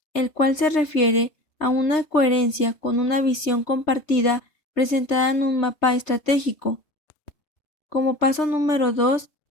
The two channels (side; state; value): right; late; 3.3 ms